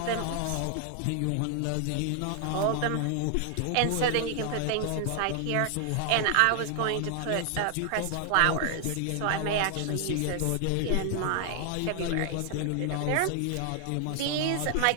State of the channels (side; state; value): both; different; correlation 0.00